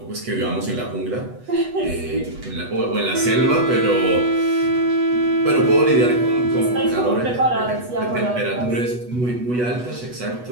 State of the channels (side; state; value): left; late; 8.1 ms